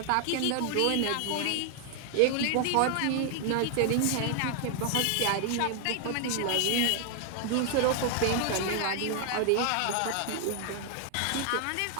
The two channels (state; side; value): different; both; correlation 0.00